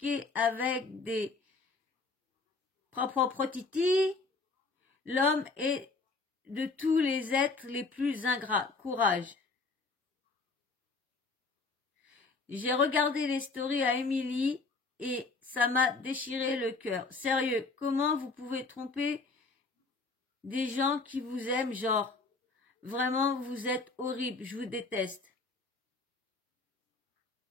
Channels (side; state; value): right; quieter; 3.8 dB